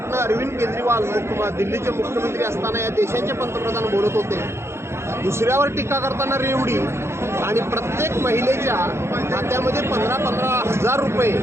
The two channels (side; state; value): left; late; 0.13 ms